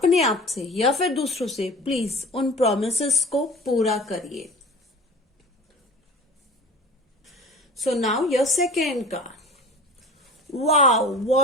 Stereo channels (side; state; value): both; normal; correlation 0.40